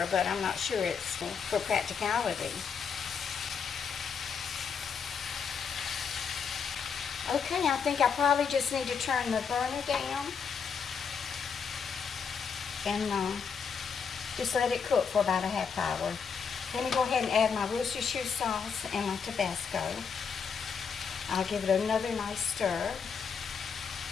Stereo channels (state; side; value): quieter; right; 6.3 dB